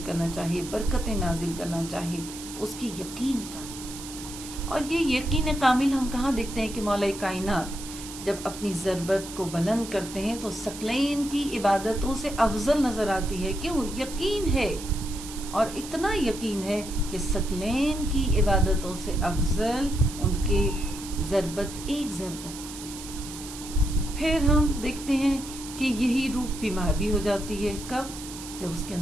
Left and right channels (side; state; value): right; noise; hiss, 12 dB below the sound